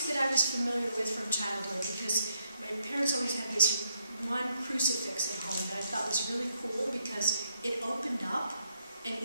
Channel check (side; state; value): both; inverted; correlation -0.76